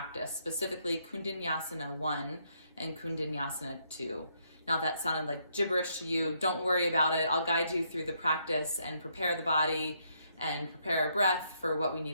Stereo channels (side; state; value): both; inverted; correlation -0.74